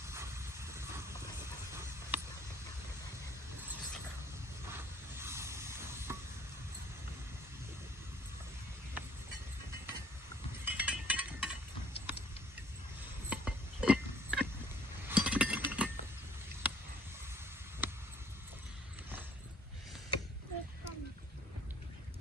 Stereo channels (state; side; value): normal; both; correlation 0.58